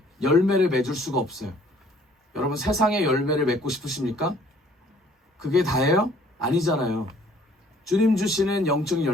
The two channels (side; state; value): both; normal; correlation 0.58